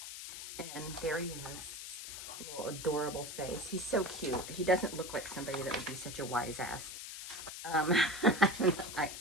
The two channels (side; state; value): left; noise; hiss, 9 dB below the sound